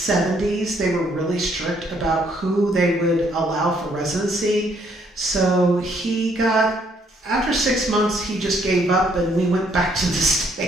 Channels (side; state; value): both; normal; correlation 0.68